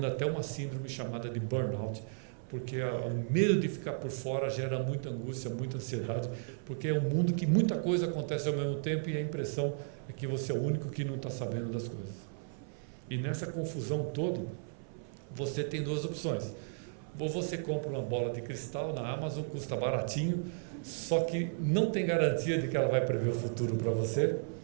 até uma síndrome chamada de burnout, porque o medo de ficar por fora gera muita angústia, muita ansiedade, porque é um mundo que muita coisa acontece ao mesmo tempo e a impressão é que você é o único que não está sabendo das coisas. E nessa confusão toda, você tem duas opções. Ou você compra uma bola de cristal na Amazon, custa baratinho, só que não tem garantia de que ela vai prever o futuro para você,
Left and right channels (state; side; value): silent; left; 55 dB below the other